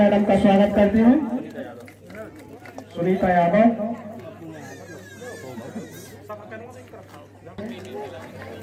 का स्वागत करते हैं, सुनीता यादव।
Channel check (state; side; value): identical; both; correlation 1.00